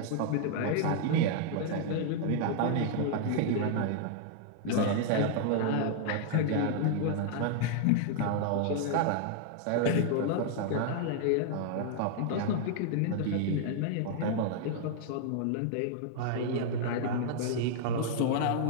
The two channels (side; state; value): both; different; correlation 0.00